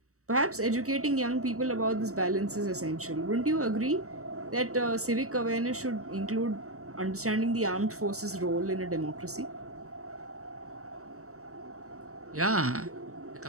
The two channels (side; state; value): left; late; 0.65 ms